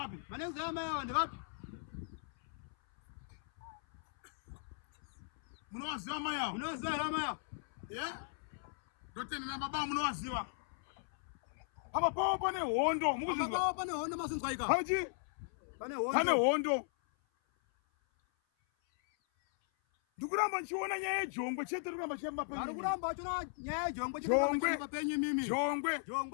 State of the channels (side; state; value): right; silent; 53 dB below the other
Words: Mane kudzenya mai vanhu vapi? Munowaziva mai avo? Munowaziva here mai avo? Ndotenda na baba munowaziva. Apa pawo pane hondo, mukuzinzwa. Apa pawo pane hondo masinzwa ika. Pachi? Pane hondo. Pane hondo. Ndikuramba nchiona nyaya yejongwe chete ndikuramba chiyamba penyu. Ndikuramba chona nyaya yejongwe chete ndikuramba chiyamba penyu mimi. Jongwe.